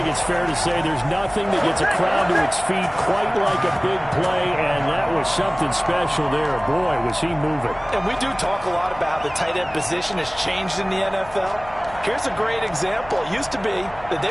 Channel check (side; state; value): left; noise; hum, 19 dB below the sound